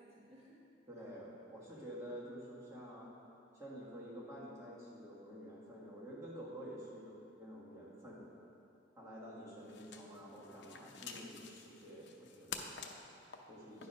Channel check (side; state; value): both; normal; correlation 0.29